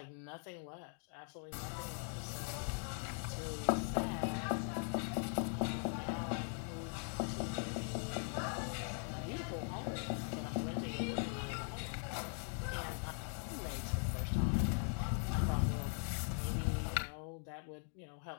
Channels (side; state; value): right; silent; 50 dB below the other